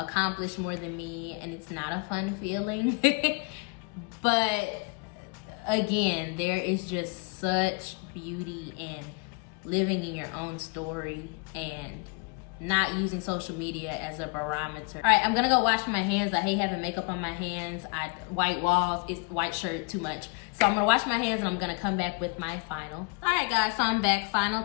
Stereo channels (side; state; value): right; quieter; 31.6 dB